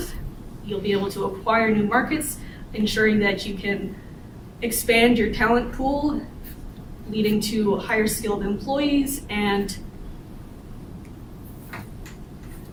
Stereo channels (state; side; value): identical; both; correlation 1.00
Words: You'll be able to acquire new markets, ensuring that you can expand your talent pool, leading to higher skilled employees and